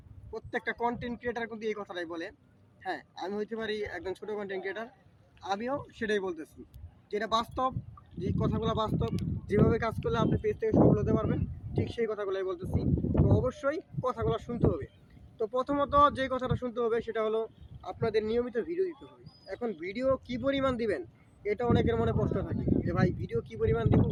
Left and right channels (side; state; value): both; identical; correlation 1.00